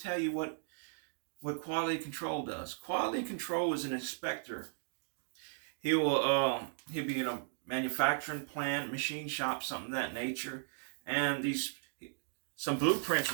you what quality control does. Quality control is an inspector. He'll be in a manufacturing plant, machine shop, something of that nature, and some blueprints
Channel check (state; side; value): silent; left; digital silence